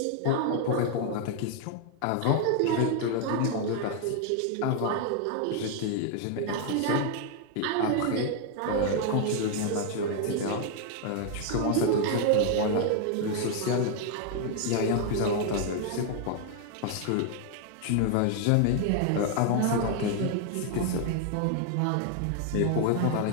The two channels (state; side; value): different; both; correlation 0.00